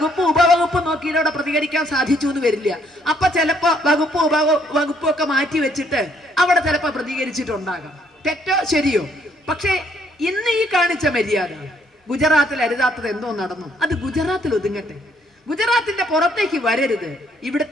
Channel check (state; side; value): normal; both; correlation 0.68